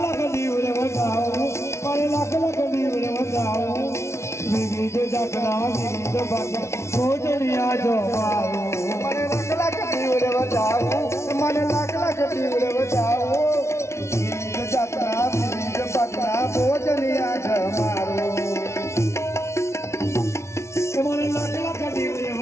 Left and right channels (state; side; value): late; right; 0.13 ms